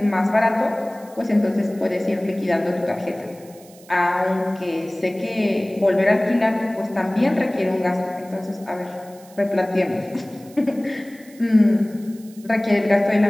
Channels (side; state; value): right; noise; hiss, 24 dB below the sound